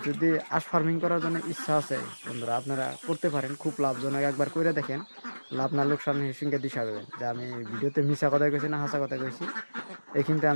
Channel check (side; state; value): both; inverted; correlation -1.00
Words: যদি হাঁস ফার্মিং করার জন্য ইচ্ছা আছে বন্ধুরা, আপনারা করতে পারেন, খুব লাভজনক। একবার করে দেখেন, লাভ না লোকসান হিসেবে দিশা দেবেন যে আমি ভিডিওতে মিশা কথা কইছি না হাসা কথা কইছি। এই কিন্তু